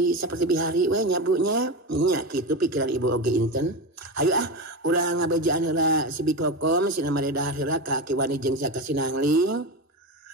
saperti bihari we nya Bu nya. Nya kitu pikiran ibu oge Inten. Hayu urang ngabejaan heula si Bikokom sina maredahar heula ka Aki Wani jeung jaka Sinangling.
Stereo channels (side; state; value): both; normal; correlation 0.20